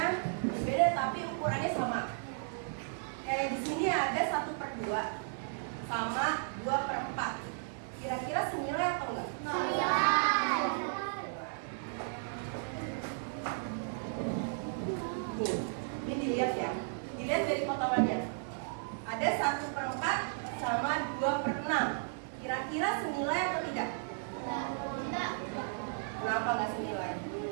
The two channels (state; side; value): silent; left; digital silence